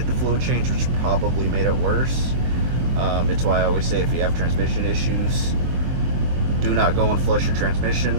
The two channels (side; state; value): left; late; 24 ms